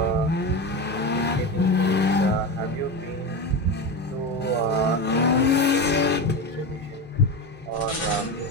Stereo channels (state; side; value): normal; both; correlation 0.20